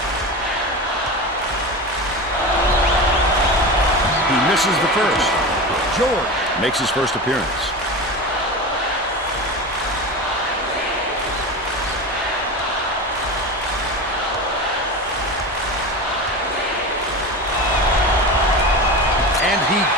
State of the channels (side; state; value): both; normal; correlation 0.26